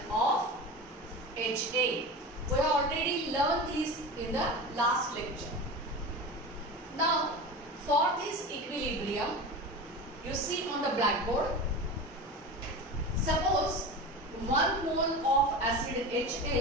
of HA. We have already learned this in the last lecture. Now, for this equilibrium, you see on the blackboard, suppose 1 mole of acid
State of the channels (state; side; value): normal; both; correlation 0.29